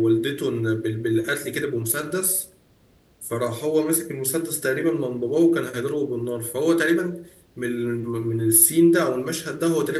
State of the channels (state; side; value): identical; both; correlation 1.00